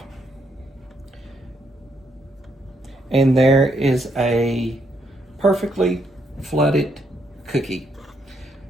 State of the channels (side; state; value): both; normal; correlation 0.75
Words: And there is a perfectly flooded cookie.